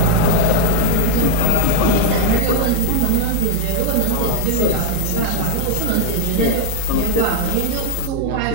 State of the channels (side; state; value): both; different; correlation 0.02